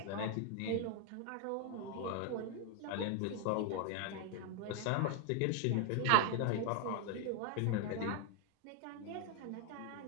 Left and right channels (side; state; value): both; different; correlation 0.00